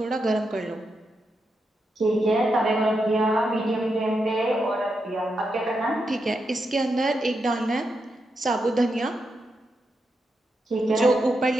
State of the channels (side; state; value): both; normal; correlation 0.85